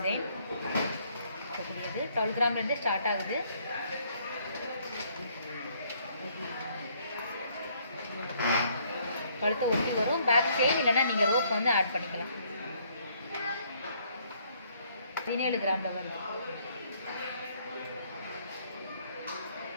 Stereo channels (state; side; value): inverted; both; correlation -0.66